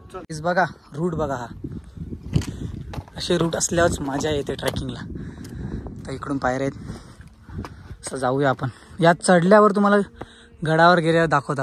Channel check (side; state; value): both; identical; correlation 1.00